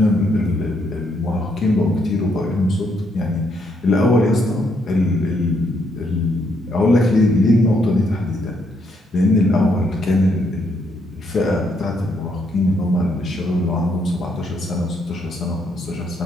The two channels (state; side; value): normal; both; correlation 0.74